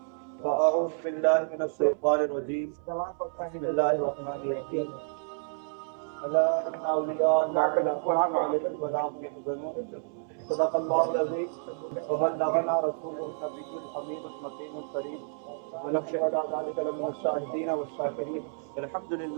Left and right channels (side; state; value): left; silent; 58 dB below the other